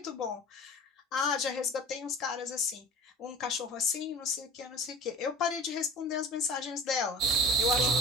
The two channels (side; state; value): both; normal; correlation 0.38